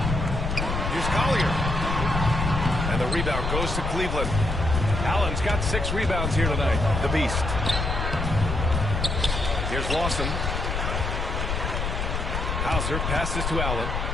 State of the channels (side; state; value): left; noise; rumble, 2 dB below the sound